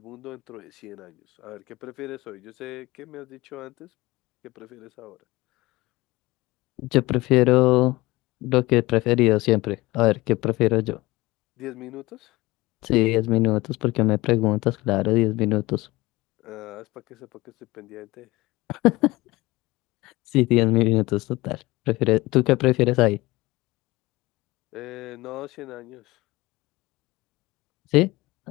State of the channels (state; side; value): quieter; right; 20.3 dB